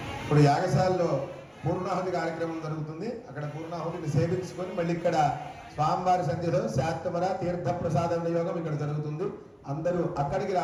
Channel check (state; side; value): identical; both; correlation 1.00